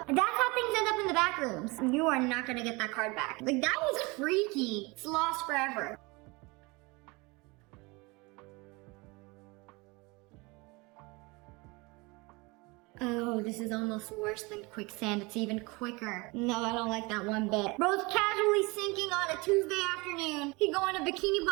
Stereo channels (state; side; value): quieter; left; 25.8 dB